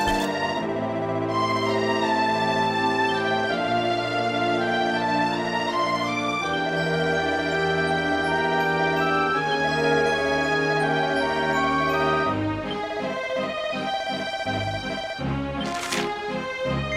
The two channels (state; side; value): identical; both; correlation 1.00